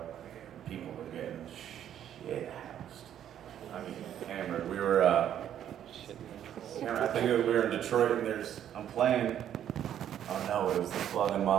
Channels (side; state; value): left; quieter; 10.3 dB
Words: People were getting shit housed. I mean, hammered. We were, I think we were in Detroit, and I'm playing. Oh no, it was the Flock